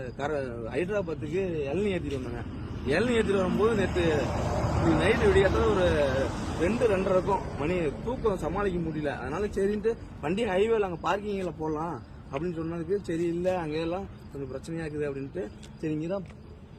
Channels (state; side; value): identical; both; correlation 1.00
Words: ஹைதராபாத்துக்கு இளநீ ஏற்றிட்டு வந்தாங்க. இளநீ ஏற்றிட்டு வரும்போது நேற்று நைட்டு விடியாத ஒரு 2:30 இருக்கும் மணி. தூக்கம் சமாளிக்க முடியல. அதனால சரின்ட்டு வண்டி ஹைவேல அங்கே பார்க்கிங்கில் போடலாம் அப்படின்னு சொன்னதுக்கு சரி இல்லை அங்கெல்லாம் கொஞ்சம் பிரச்சனையா இருக்குது அப்படின்ட்டு சரி இங்கே தான்